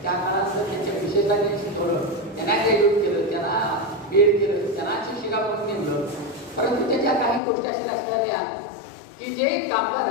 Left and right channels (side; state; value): right; drops out; at 7.4 s